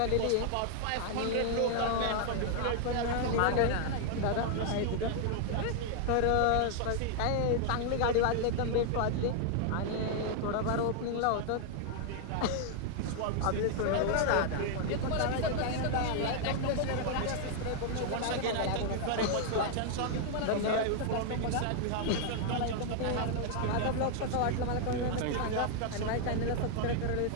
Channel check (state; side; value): different; both; correlation 0.00